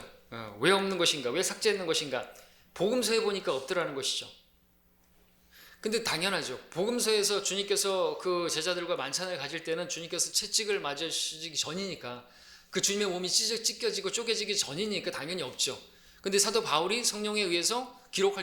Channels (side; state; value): both; identical; correlation 1.00